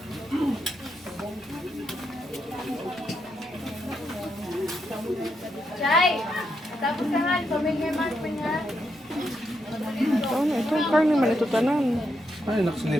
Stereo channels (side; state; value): both; normal; correlation 0.81